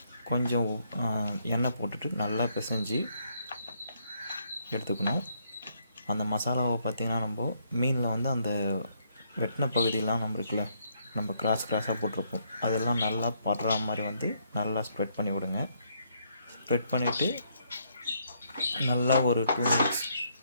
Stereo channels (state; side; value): inverted; both; correlation -0.72